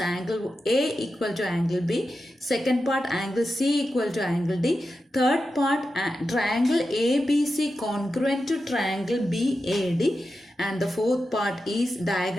A equal to angle B. Second part angle C equal to angle D. Third part triangle ABC congruent to triangle BAD. And the fourth part is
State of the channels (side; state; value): both; normal; correlation 0.90